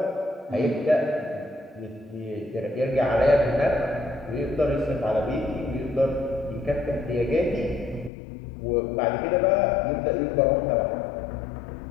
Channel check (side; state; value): right; drops out; at 8.1 s